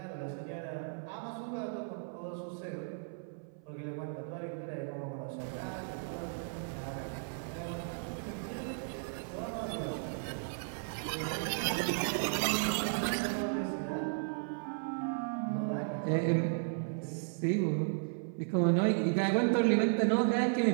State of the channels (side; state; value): left; silent; 54 dB below the other